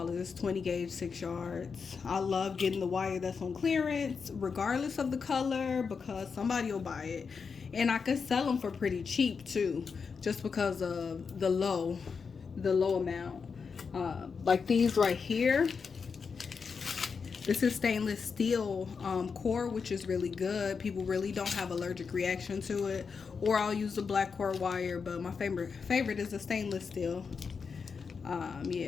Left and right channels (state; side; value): quieter; right; 5.5 dB